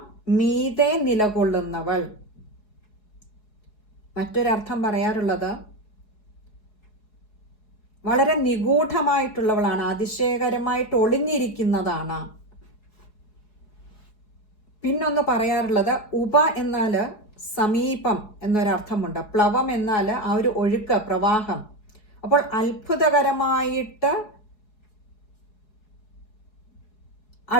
മീതെ നിലകൊള്ളുന്നവൾ. മറ്റൊരർത്ഥം പറയാറുള്ളത് വളരെ നിഗൂഢമായിട്ടുള്ളവളാണ്, അതിശയകരമായിട്ട് ഒളിഞ്ഞിരിക്കുന്നതാണ്. പിന്നൊന്ന് പറയാറുള്ളത് ഉപ എന്നാൽ സമീപം എന്നൊരർത്ഥമുണ്ട്. പ്ലവം എന്നാൽ ആ ഒരു ഒഴുക്ക്, പ്രവാഹം. അപ്പോൾ അത്ഭുതകരമായിട്ട്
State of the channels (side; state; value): right; late; 4.7 ms